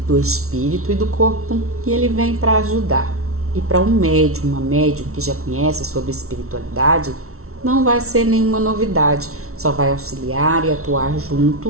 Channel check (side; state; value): left; late; 0.63 ms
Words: do espírito e do corpo e ele vem para ajudar. E para um médium, uma médium que já conhece sobre espiritualidade, não vai ser nenhuma novidade, só vai auxiliar e atuar